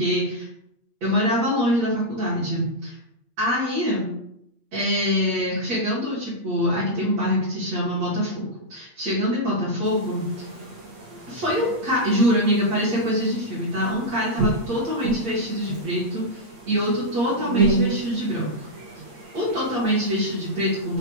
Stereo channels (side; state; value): left; late; 8.6 ms